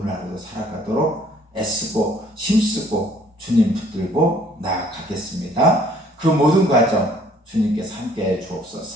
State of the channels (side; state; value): both; normal; correlation 0.59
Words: 하루도 살아가도록 애쓰고 힘쓰고 주님 붙들고 나아가겠습니다. 그 모든 과정 주님께서 함께해